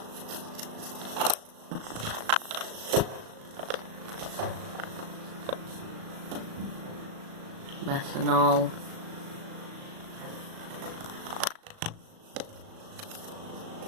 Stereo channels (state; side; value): late; left; 37 ms